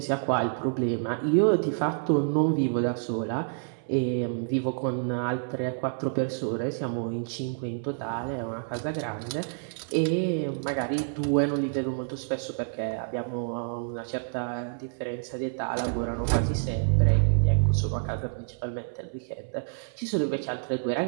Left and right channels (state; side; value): silent; left; 59 dB below the other